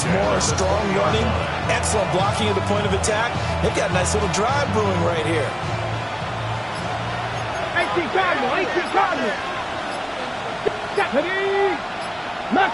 more, strong running, excellent blocking at the point of attack. They've got a nice little drive brewing right here. 18 Cardinal, 18 Cardinal. Ready.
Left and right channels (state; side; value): identical; both; correlation 1.00